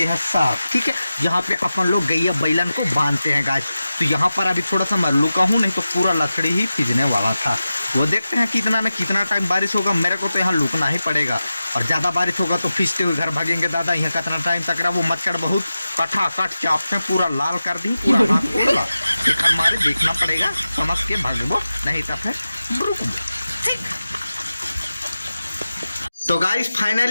है सार, ठीक है, जहाँ पे अपन लोग गैया बैलन को बांधते हैं गाइस। तो यहाँ पर अभी थोड़ा सा मैं लुका हूँ, नहीं तो पूरा लकड़ी ही पिजने वाला था। वो देखते हैं कितना टाइम बारिश होगा। मेरे को तो यहाँ लुकना ही पड़ेगा, और ज्यादा बारिश होगा तो फिसते हुए घर भागेंगे दादा। यहाँ कितना टाइम तक रहा, वो मच्छर बहुत कटाकट चापते पूरा लाल कर दी, पूरा हाथ खोला। हमारे देखना पड़ेगा, समझ के भागबो, नहीं तो फिर रुकबो, ठीक। तो गाइस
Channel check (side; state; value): both; inverted; correlation -0.93